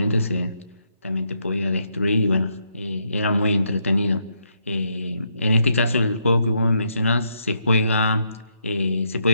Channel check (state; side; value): inverted; both; correlation -0.77